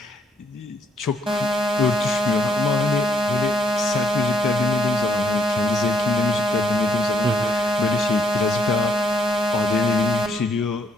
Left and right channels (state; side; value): normal; both; correlation 0.71